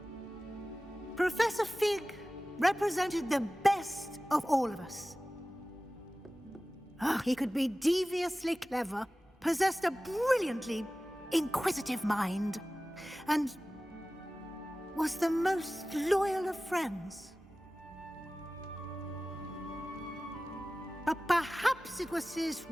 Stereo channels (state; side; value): normal; both; correlation 0.97